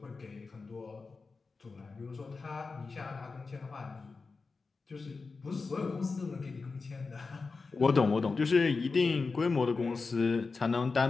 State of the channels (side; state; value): right; quieter; 4.3 dB